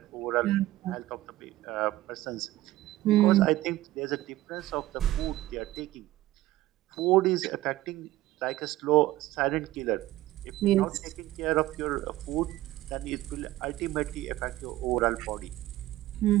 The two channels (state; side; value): quieter; left; 16.3 dB